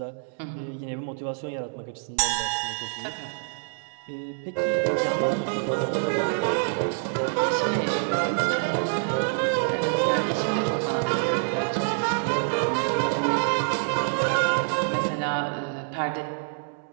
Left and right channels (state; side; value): silent; left; 61 dB below the other